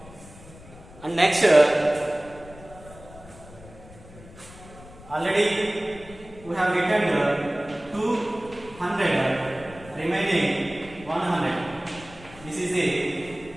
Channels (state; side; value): noise; left; rumble, 19 dB below the sound